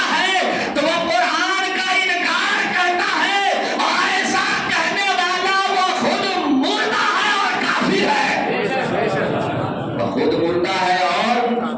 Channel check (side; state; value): both; identical; correlation 1.00